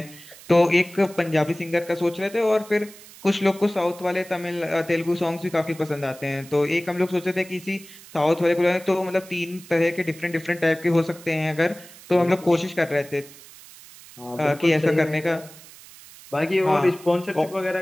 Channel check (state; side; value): noise; right; hiss, 20 dB below the sound